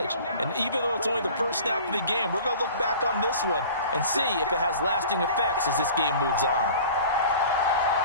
And even though it's only the first snap of the game, we're going to look back on this one and see if it has lasting effects as this game moves on.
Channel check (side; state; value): both; inverted; correlation -0.43